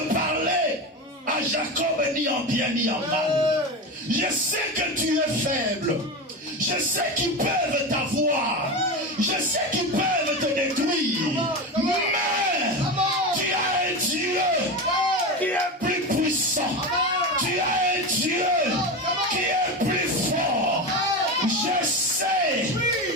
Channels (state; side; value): normal; both; correlation 0.21